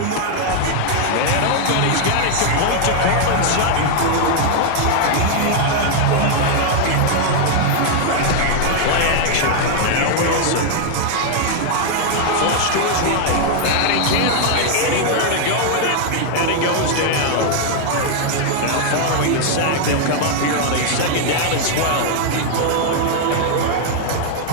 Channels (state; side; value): different; both; correlation 0.00